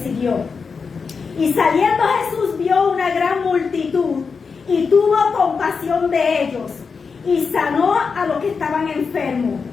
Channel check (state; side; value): quieter; right; 5.3 dB